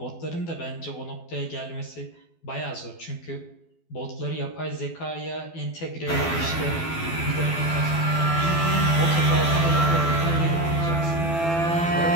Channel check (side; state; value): right; late; 12 ms